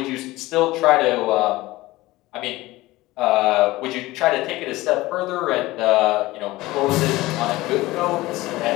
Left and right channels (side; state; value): right; quieter; 18.8 dB